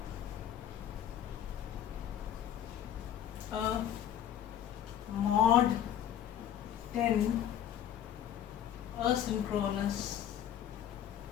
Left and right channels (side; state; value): right; quieter; 10.3 dB